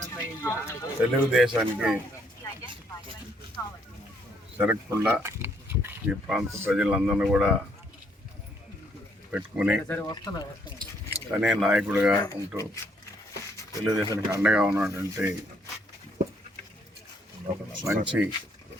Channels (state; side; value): normal; both; correlation 0.69